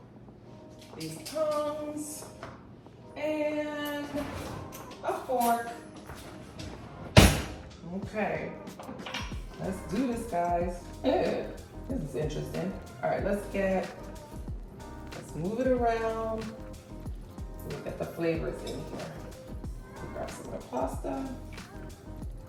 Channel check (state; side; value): identical; both; correlation 1.00